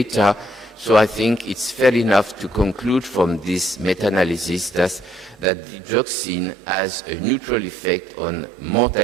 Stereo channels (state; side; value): drops out; left; at 5.5 s